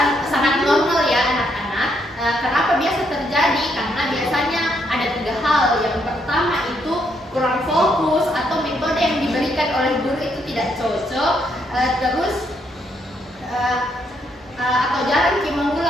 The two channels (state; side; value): normal; both; correlation 0.75